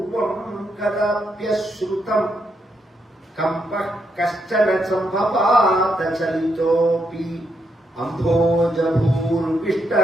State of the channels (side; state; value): both; normal; correlation 0.79